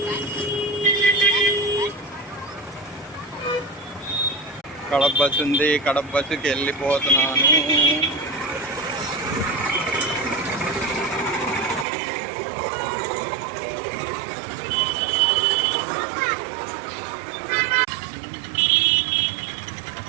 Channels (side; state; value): left; drops out; at 11.9 s